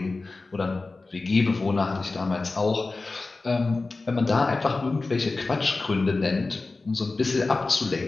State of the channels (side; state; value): right; quieter; 3.6 dB